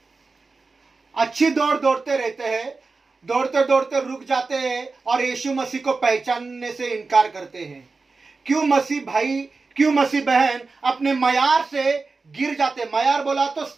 अच्छी दौड़ दौड़ते रहते हैं, दौड़ते दौड़ते रुक जाते हैं और यीशु मसीह को पहचानने से इनकार करते हैं। क्यों मसीह भाई, क्यों मसीह बहन अपने मयार से गिर जाते। मयार बोला तो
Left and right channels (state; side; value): quieter; left; 4.0 dB